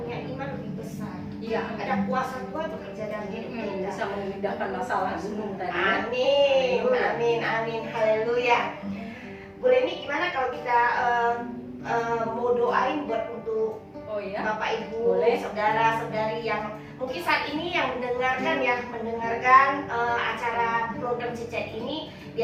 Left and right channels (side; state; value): both; identical; correlation 1.00